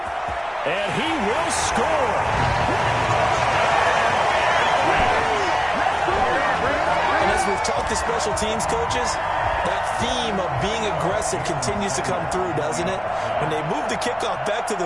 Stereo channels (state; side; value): identical; both; correlation 1.00